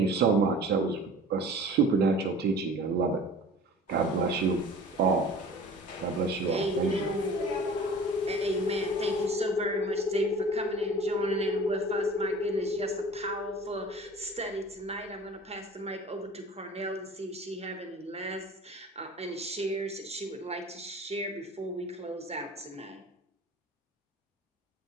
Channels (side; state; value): both; normal; correlation 0.43